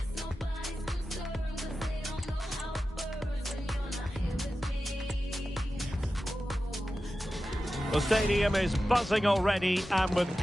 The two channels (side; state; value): both; normal; correlation 0.93